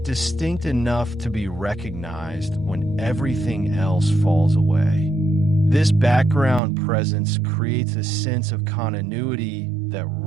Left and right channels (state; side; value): drops out; left; at 6.6 s